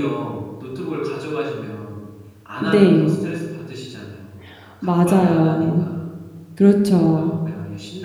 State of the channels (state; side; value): identical; both; correlation 1.00